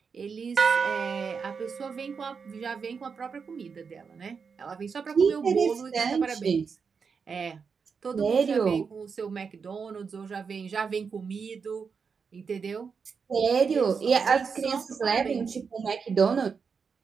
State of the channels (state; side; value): quieter; left; 5.7 dB